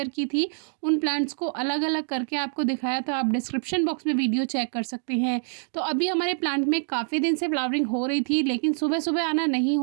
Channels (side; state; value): left; silent; digital silence